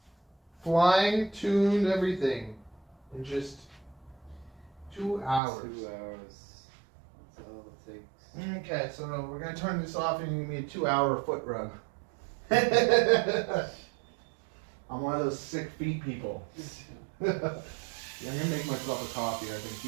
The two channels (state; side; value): drops out; left; at 5.4 s